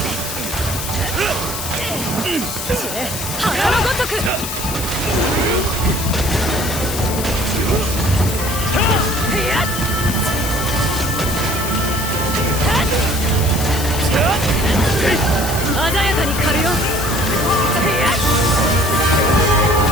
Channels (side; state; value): left; noise; hiss, 6 dB below the sound